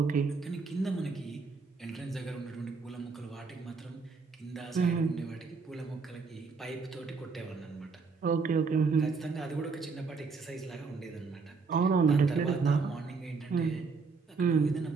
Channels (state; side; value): quieter; left; 4.7 dB